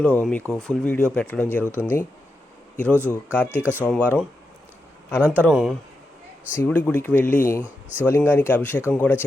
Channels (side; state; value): both; normal; correlation 0.87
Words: మీకు ఫుల్ వీడియో పెట్టడం జరుగుతుంది. ఈరోజు కార్తీక సోమవారం అనంతరం శివుడి గుడికి వెళ్ళి శివలింగానికి అభిషేకం కూడా